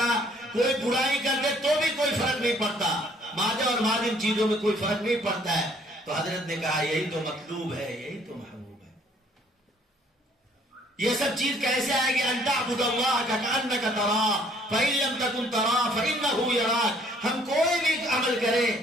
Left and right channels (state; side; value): normal; both; correlation 0.61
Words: کوئی برائی کر دے تو بھی کوئی فرق نہیں پڑتا، مادہ اور مادم چیزوں میں کوئی فرق نہیں پڑتا ہے۔ تو حضرت نے کہا یہی تو مطلوب ہے، یہی تو محبوب ہے۔ یہ سب چیز کیسے آئے گی؟ ان تعبد اللہ کأنک تراہ فإن لم تکن تراہ فإنہ یراک۔ ہم کوئی بھی عمل